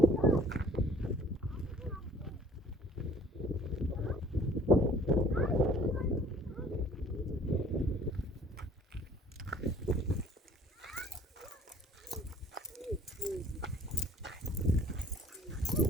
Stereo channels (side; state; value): both; normal; correlation 0.53